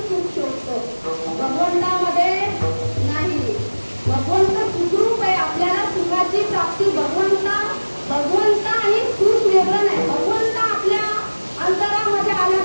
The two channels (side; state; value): both; inverted; correlation -1.00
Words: सुख शोधतो, भगवंतामध्ये नाही. भगवंत सुखरूप आहे. आपल्याला सुखाची प्राप्ती भगवंत आणि सुख वेगळं नाही. भगवंत आपल्या अंतरामध्ये आला